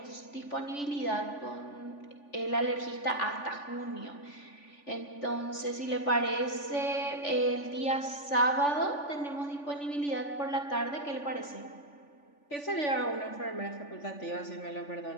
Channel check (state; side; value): late; right; 3.5 ms